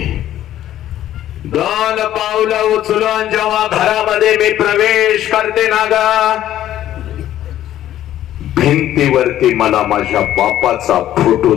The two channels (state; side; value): quieter; right; 12.4 dB